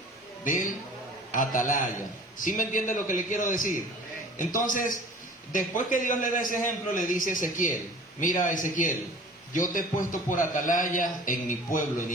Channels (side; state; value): both; normal; correlation 0.45